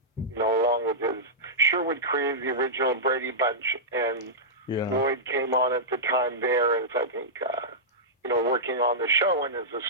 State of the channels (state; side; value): normal; both; correlation -0.13